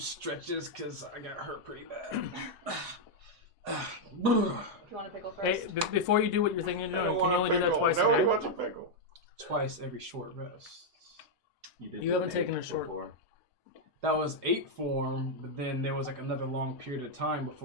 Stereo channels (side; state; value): left; late; 4.8 ms